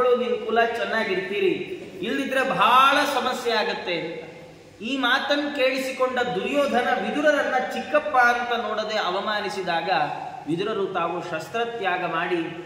ನಿನ್ನ ಕುಲ ಚೆನ್ನಾಗಿರ್ತೀರಿ, ಇಲ್ಲದಿದ್ರೆ ಬಹಳ ಸಮಸ್ಯೆ ಆಗತ್ತೆ. ಈ ಮಾತನ್ನು ಕೇಳಿಸಿಕೊಂಡ ದುರ್ಯೋಧನ ವಿದುರರನ್ನ ಚಿಕ್ಕಪ್ಪ ಅಂತ ನೋಡದೆ ಅವಮಾನಿಸಿದಾಗ ವಿದುರರು ತಾವು ಶಸ್ತ್ರತ್ಯಾಗ ಮಾಡಿ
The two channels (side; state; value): both; identical; correlation 1.00